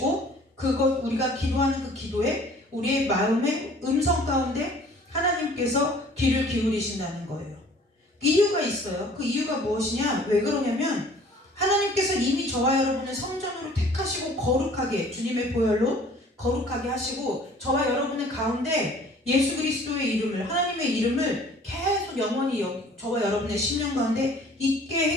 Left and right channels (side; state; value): both; normal; correlation 0.52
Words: 우리가 기도하는 그 기도에 우리의 마음의 음성 가운데 하나님께서 귀를 기울이신다는 거예요. 이유가 있어요. 그 이유가 무엇이냐? 왜 그러냐면 하나님께서 이미 저와 여러분을 성전으로 택하시고 거룩하게, 주님의 보혈로 거룩하게 하시고 저와 여러분의 가운데 예수 그리스도의 이름을, 하나님의 이름을 계속 영원히 저와 여러분의 심령 가운데 있게